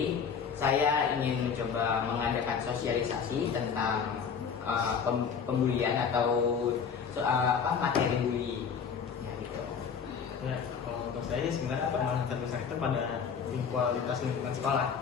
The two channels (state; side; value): quieter; right; 6.6 dB